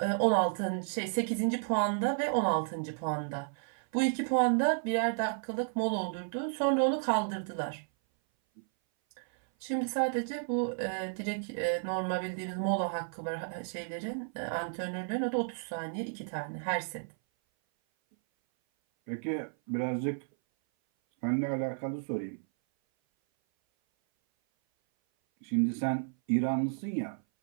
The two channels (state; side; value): silent; left; 56 dB below the other